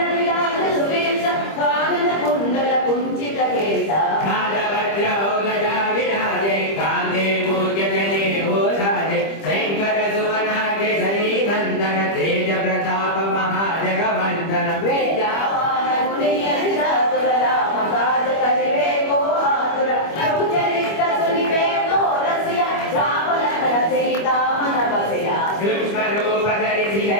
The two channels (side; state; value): right; late; 25 ms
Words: विराज सुवेश कानन कुंडल कुंचित केश वज्र गदा विराजे कांधे मूर्ज जने ओधारे शंकर सुवना केसरी नंदन तेज प्रताप महाजगवंदन विद्यावान गुणी अतिचातुर राम काज करिवे को आतुर प्रभु चरित्र सुनिवे को रसिया राम लखन सीता मन बसिया सूक्ष्म रूप धरि